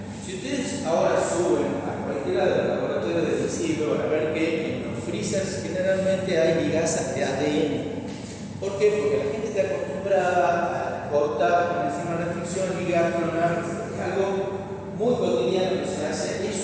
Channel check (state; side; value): identical; both; correlation 1.00